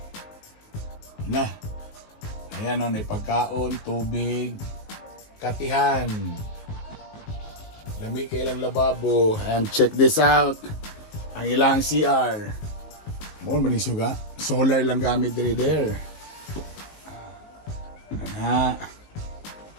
Nah. Ayan o, may pagkaon, tubig, katihan. Lami ka ilang lababo. And check this out. Ang ilang CR. More manisuga. Solar lang gamit diri there.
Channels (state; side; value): late; right; 19 ms